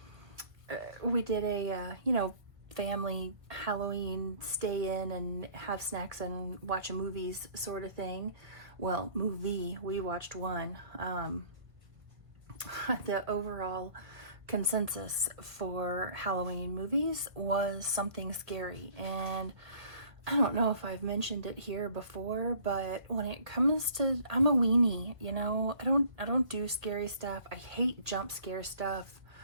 did a family Halloween stay in and have snacks and watch a movies sort of thing. Well, movie, we watched one. The overall consensus for Halloween movies was something scary, and I don't know if I've mentioned it here before, but when it comes to, I'm a weenie, I don't do scary stuff. I hate jump scare stuff,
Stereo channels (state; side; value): late; left; 1.5 ms